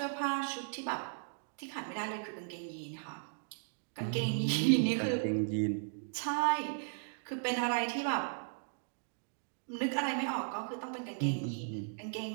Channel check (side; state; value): left; silent; digital silence